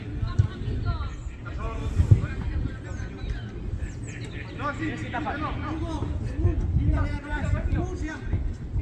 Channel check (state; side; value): identical; both; correlation 1.00